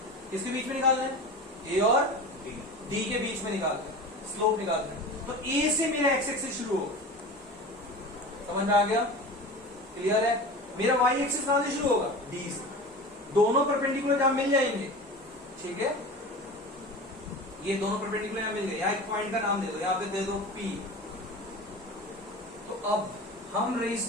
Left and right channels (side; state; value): both; normal; correlation 0.33